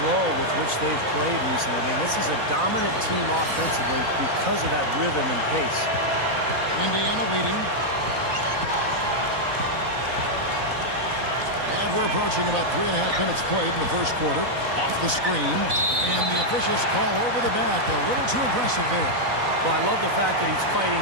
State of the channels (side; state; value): left; late; 4.0 ms